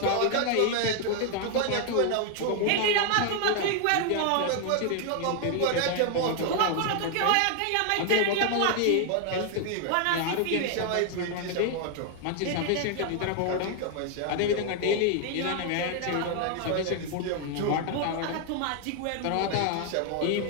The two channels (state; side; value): different; both; correlation 0.00